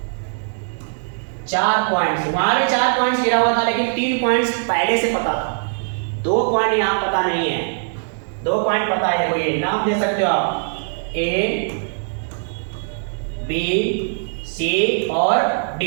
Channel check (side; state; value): left; silent; 64 dB below the other